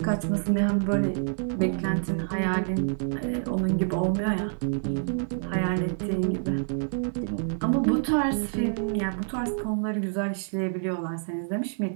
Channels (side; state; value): left; silent; digital silence